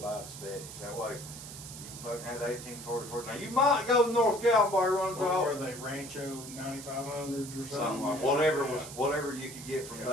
aesthetics. That way, you fucking had 1844. Now, you might go to North Gallenberg runs What off. were they, Rancho 9500s or something? Something like, Yeah. whatever Yeah. was, whatever you could get from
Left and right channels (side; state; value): right; noise; hiss, 12 dB below the sound